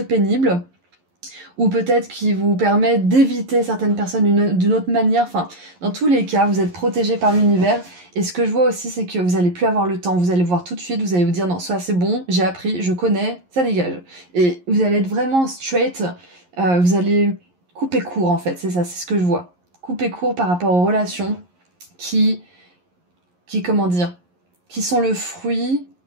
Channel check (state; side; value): late; left; 11 ms